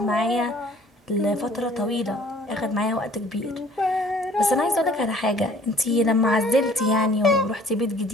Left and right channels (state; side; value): normal; both; correlation 0.54